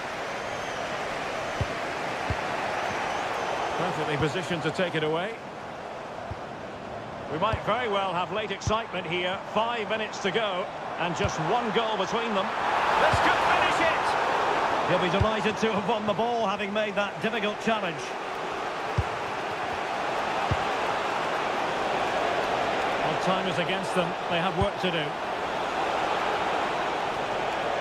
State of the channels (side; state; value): both; identical; correlation 1.00